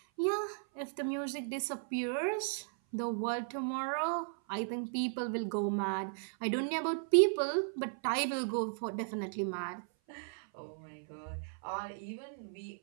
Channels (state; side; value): silent; left; 54 dB below the other